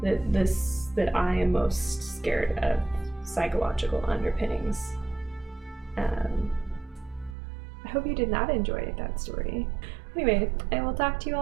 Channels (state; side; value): drops out; left; at 7.4 s